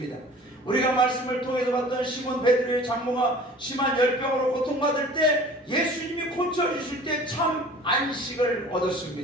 우리가 말씀을 통해서 봤던 시몬 베드로의 장모가 심한 열병으로 고통받을 때 예수님이 고쳐주실 때 참 안식을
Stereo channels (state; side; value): normal; both; correlation 0.45